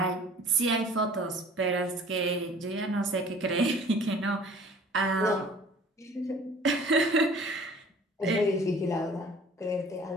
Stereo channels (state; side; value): normal; both; correlation 0.49